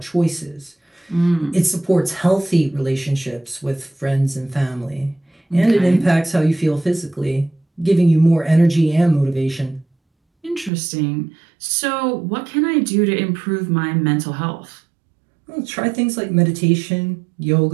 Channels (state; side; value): drops out; left; at 10.7 s